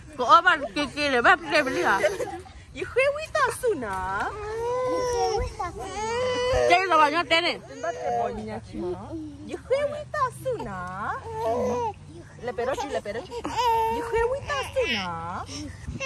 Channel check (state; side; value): identical; both; correlation 1.00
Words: Có bạn kia để bác kia bên đi hả? Khuê quý ta su nà. Chơi là bao nhiêu tiền này? Khuê quý ta su nà. Le perochi. Khuê quý ta su nà.